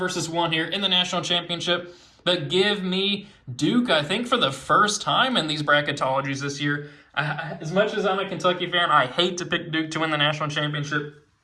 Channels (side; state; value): both; identical; correlation 1.00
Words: 1 here in the national championship. But give me Duke, I think, for the first time in these bracketologies this year. As much as I'm a Kentucky fan, I hate to pick Duke to win the national championship,